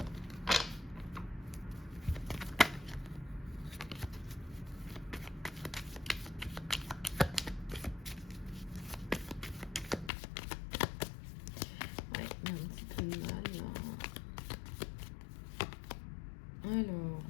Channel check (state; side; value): drops out; right; at 10.1 s